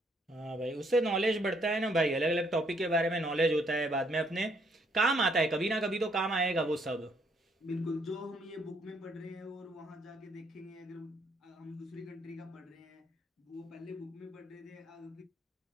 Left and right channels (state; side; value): normal; both; correlation 0.69